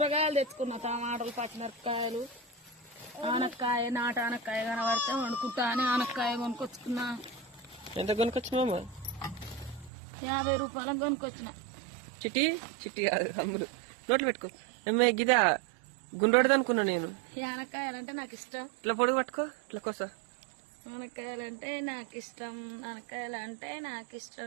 తెచ్చుకున్నా, టమాటాలు, పచ్చిమిరపకాయలు, ఆనక్కాయ, నాటు ఆనక్కాయ కనబడితే వండుకుంటా అని ఆనక్కాయ కొనుక్కొచ్చుకున్నా. ఎంత కొనుక్కొచ్చినామా? 50 రూపాయలకు కొనుక్కొచ్చిన. చిట్టి చిట్టి కాదు అమ్ములు, నోట్లు పెట్టుకో. ఏమే గిదా గుండ్రోడది అనుకున్నా నేను. ఆనక్కాయలు అంటే నాకు ఇష్టం. ఇట్లా పొడుగు పట్టుకో, ఇట్లా కోసా. ఆనక్కాయలు అంటే నాకు ఇష్టం, ఆనక్కాయలు అంటే నాకు ఇష్టం.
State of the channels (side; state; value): left; drops out; at 9.9 s